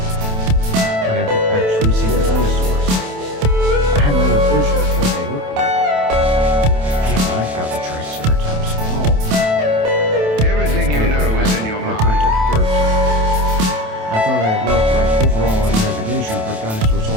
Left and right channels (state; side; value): late; left; 27 ms